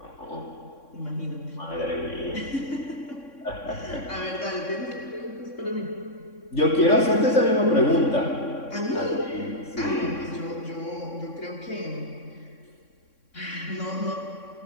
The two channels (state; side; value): late; right; 3.6 ms